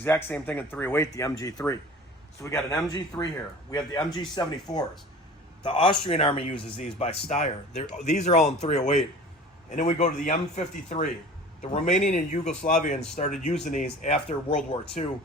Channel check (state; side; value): normal; both; correlation 0.41